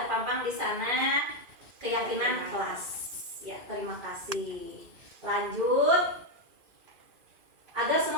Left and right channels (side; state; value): left; late; 2.4 ms